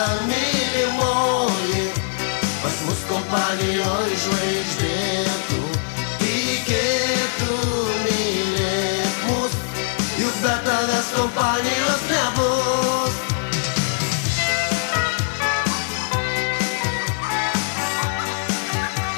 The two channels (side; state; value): right; silent; digital silence